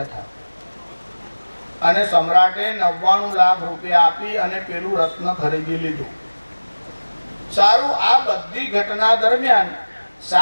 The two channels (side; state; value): both; inverted; correlation -1.00